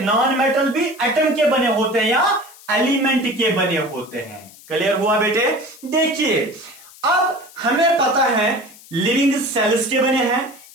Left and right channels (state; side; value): noise; left; hiss, 22 dB below the sound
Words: भी एटम के बने होते हैं या एलिमेंट के बने होते हैं। क्लियर हुआ बेटे? देखिए अब हमें पता है लिविंग सेल्स के बने हैं।